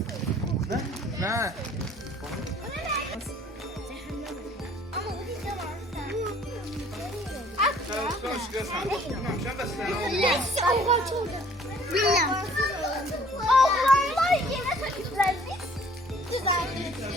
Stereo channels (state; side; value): normal; both; correlation 0.55